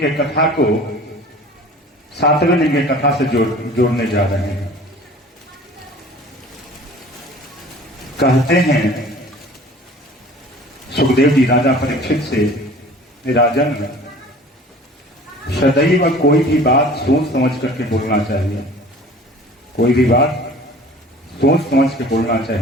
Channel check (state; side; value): normal; both; correlation 0.45